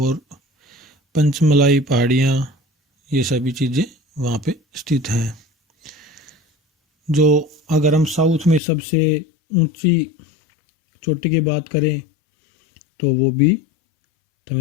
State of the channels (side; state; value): right; drops out; at 8.6 s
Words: पंचमलाई पहाड़ियाँ, ये सभी चीज़ें वहाँ पे स्थित हैं। जो अगर हम साउथ में सबसे ऊंची चोटी की बात करें तो वो भी